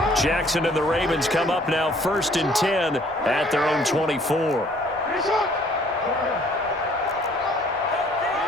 Jackson and the Ravens come up now 1st and 10 at their own 24.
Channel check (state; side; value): normal; both; correlation 0.58